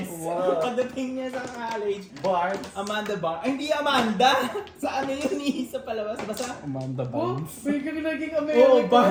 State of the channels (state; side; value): identical; both; correlation 1.00